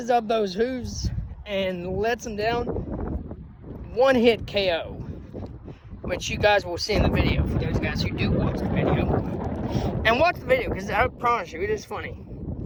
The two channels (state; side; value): identical; both; correlation 1.00